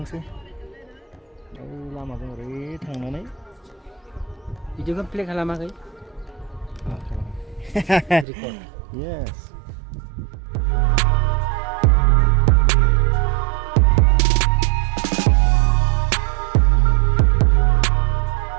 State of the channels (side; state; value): left; drops out; at 8.2 s